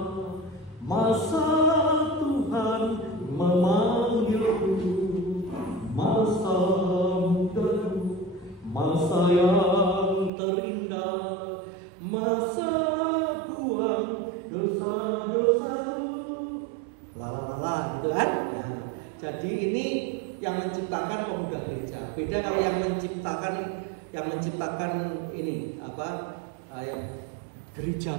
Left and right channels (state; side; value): drops out; left; at 10.3 s